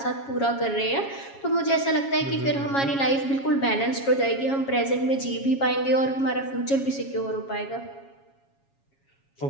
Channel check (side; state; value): right; late; 7.3 ms